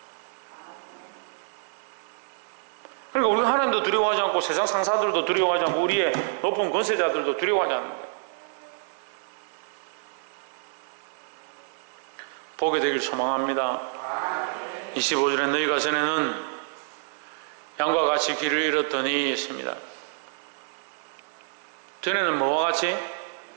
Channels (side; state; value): left; silent; 60 dB below the other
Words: 그러니까 우리가 하나님도 두려워하지 않고 세상 상사들도 두려워하지 않고 우리의 높은 권세자들도 두려워하지 않는 거예요. 보게 되길 소망합니다. 25절에 너희가 전에는 양과 같이 길을 잃었더니 했습니다. 전에는 뭐와 같이?